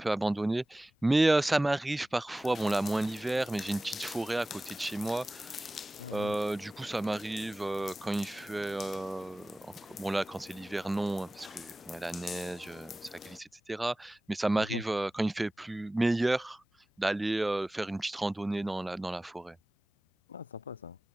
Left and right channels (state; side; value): normal; both; correlation 0.98